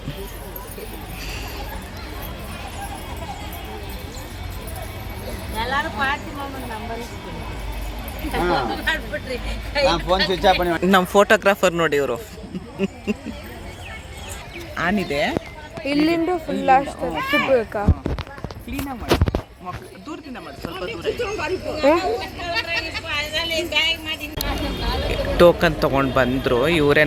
ನಮ್ಮ ಫೋಟೋಗ್ರಾಫರ್ ನೋಡಿ ಇವರು. ಆನಿದೆ ಇಲ್ಲಿಂದ ಫುಲ್ ಕ್ಲೀನಾಗಿ ಮಾಡಿ, ದೂರದಿಂದ ಮಾಡಿ, ಸ್ವಲ್ಪ ಟೋಕನ್ ತೊಗೊಂಡು ಬಂದರು. ಇವರೇ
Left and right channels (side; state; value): both; identical; correlation 1.00